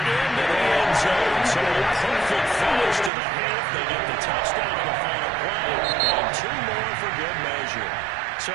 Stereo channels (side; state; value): left; drops out; at 3.1 s